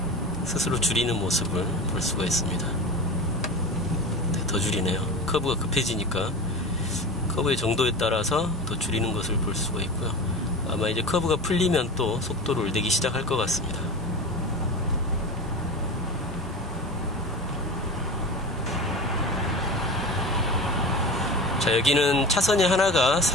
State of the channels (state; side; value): normal; both; correlation 0.30